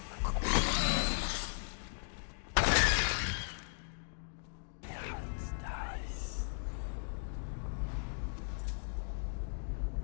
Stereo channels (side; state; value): right; silent; digital silence